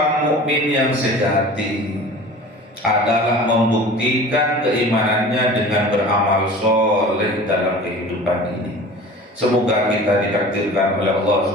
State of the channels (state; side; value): normal; both; correlation 0.40